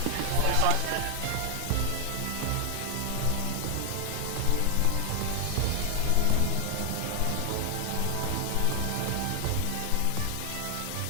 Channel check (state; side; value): different; both; correlation 0.00